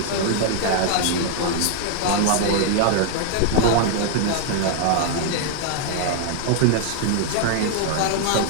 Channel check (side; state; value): both; different; correlation 0.00